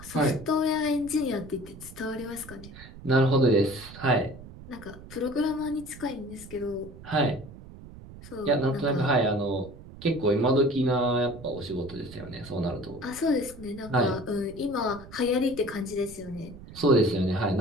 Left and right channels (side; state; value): right; noise; rumble, 17 dB below the sound